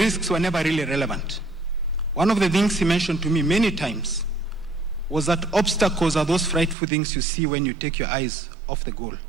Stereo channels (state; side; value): drops out; left; at 6.8 s